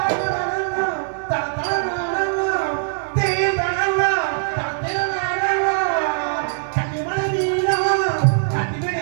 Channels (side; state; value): left; silent; 65 dB below the other